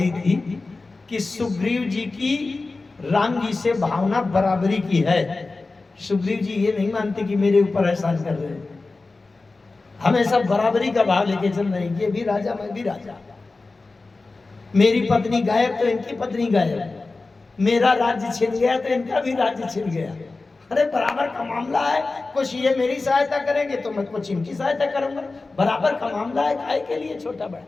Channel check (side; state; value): right; quieter; 3.6 dB